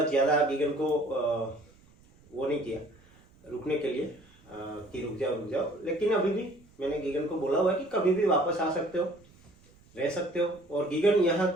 ज्यादा गीगन को वो नहीं किया रुकने के लिए कि रुक जाओ। लेकिन अभी भी मैंने गीगन को बोला हुआ है कि कभी भी वापस आ सकते हो, रह सकते हो। और गीगन यहाँ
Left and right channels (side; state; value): right; noise; rumble, 28 dB below the sound